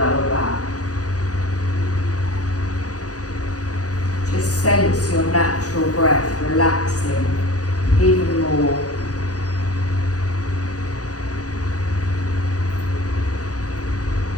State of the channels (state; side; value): late; right; 0.67 ms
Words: back. Just sense your natural breath relaxing even more.